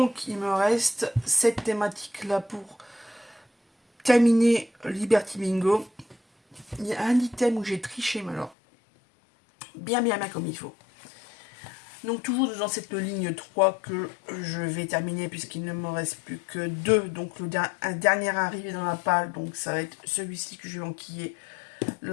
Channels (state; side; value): drops out; right; at 8.6 s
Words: il me reste cette thématique-là pour terminer Liberty Bingo. Il y a un item où j'ai triché, mais alors, bien comme il faut. Donc, toujours dans cette ligne 3 que je vais terminer, puisqu'il ne me reste plus que 2. Donc, un dernier arrivé dans la palle. Donc, ça va être celui-ci que je vais enquiller